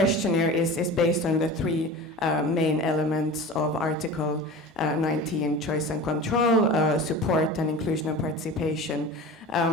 is based on the 3 main elements of Article 19, choice and control, support and inclusion and participation.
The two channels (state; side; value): normal; both; correlation 0.34